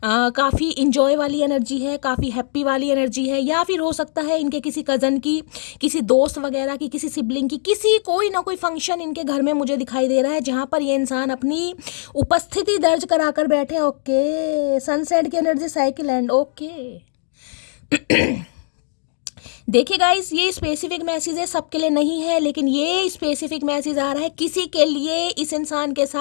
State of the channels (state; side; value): silent; right; digital silence